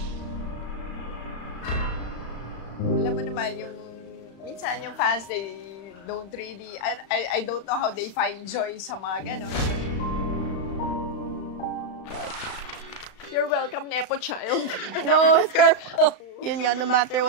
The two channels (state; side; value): late; right; 35 ms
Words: Alam mo naman, minsan yung fans, they don't really, I don't know how they find joy sa mga ganon. You're welcome, Nepo child. No, it's your fault. Yun nga, no matter